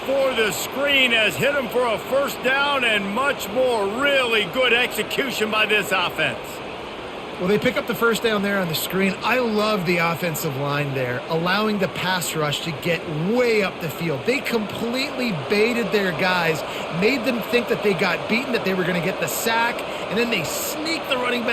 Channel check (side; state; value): both; identical; correlation 1.00